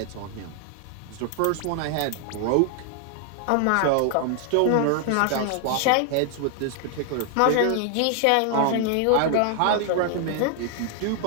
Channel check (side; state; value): both; different; correlation 0.00